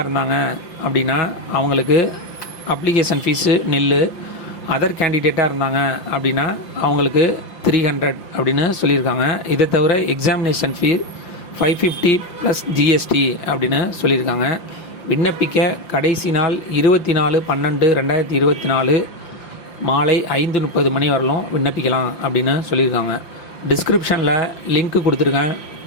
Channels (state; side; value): late; right; 5.8 ms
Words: இருந்தாங்க அப்படின்னா அவங்களுக்கு அப்ளிகேஷன் ஃபீஸு நில்லு, அதர் கேண்டிடேட்டாக இருந்தாங்க அப்படின்னா அவங்களுக்கு 300 அப்படின்னு சொல்லியிருக்காங்க. இதை தவிர எக்ஸாமினேஷன் ஃபீ 550 + ஜிஎஸ்டி அப்படின்னு சொல்லியிருக்காங்க. விண்ணப்பிக்க கடைசி நாள் 24/12/2024 மாலை 5:30 மணி வரலும் விண்ணப்பிக்கலாம் அப்படின்னு சொல்லியிருக்காங்க. டிஸ்கிரிப்ஷனில் லிங்க் கொடுத்துருக்கேன்.